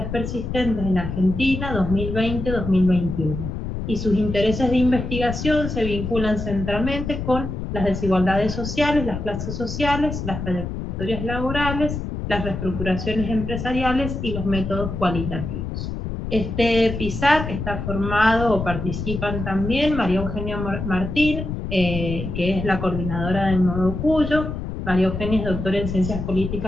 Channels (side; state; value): left; noise; rumble, 5 dB below the sound